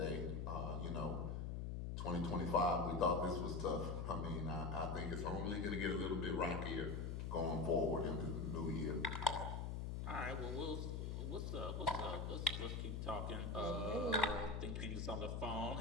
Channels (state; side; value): noise; left; hum, 2 dB below the sound